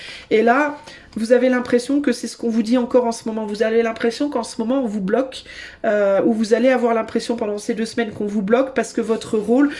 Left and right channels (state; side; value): identical; both; correlation 1.00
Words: Et là, vous avez l'impression que c'est ce qu'on vous dit encore en ce moment. Vous avez l'impression qu'en ce moment on vous bloque, ou vous allez avoir l'impression pendant ces 2 semaines qu'on vous bloque parce que votre rôle,